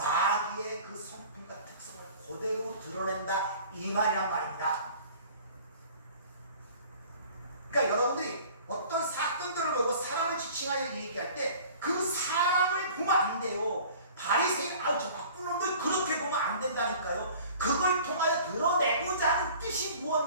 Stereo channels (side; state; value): both; inverted; correlation -0.47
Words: 그 성품과 특성을 그대로 드러낸다 이 말이란 말입니다. 그러니까 여러분들이 어떤 사건들을 보고 사람을 지칭하여 얘기할 때 그 사람을 보면 안 돼요. 바리새인 저 나쁜 놈들 그렇게 보면 안 된다니까요. 그걸 통하여 드러내고자 하는 뜻이